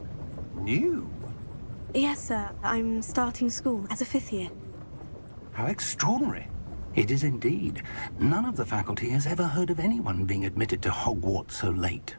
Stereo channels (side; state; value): both; inverted; correlation -1.00